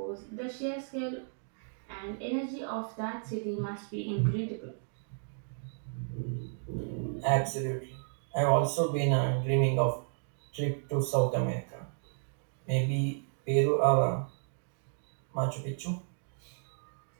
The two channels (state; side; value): silent; left; digital silence